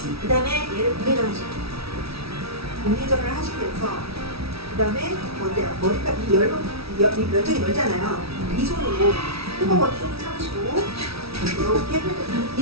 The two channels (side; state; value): left; late; 0.76 ms